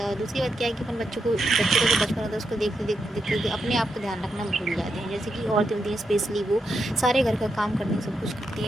और दूसरी बात क्या है कि अपन बच्चे का जो बचपन होता है उसको देखते देखते देखते देखते अपने आप को ध्यान रखना भूल जाते हैं। जैसे कि औरतें होती हैं, स्पेशली वो सारे घर का काम करती हैं, सब कुछ करती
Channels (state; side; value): normal; both; correlation 0.84